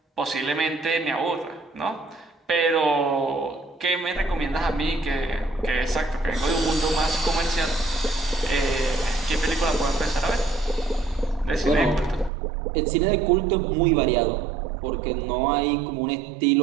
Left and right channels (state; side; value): drops out; left; at 12.3 s